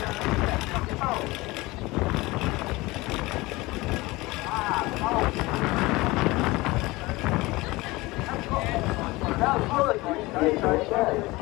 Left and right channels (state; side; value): quieter; right; 21.5 dB